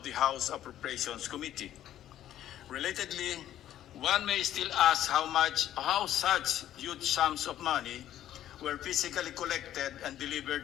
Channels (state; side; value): quieter; right; 12.0 dB